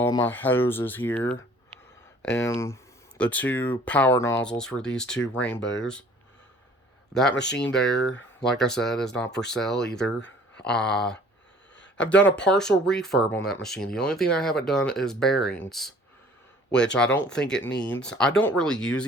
my hoses here and the two power nozzles for these two rainbows. That machine there, like I said, is not for sale either. I've done a partial refurb on that machine. The only thing I haven't done is bearings, which I don't think it needs. I don't really use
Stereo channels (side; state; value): both; normal; correlation 0.52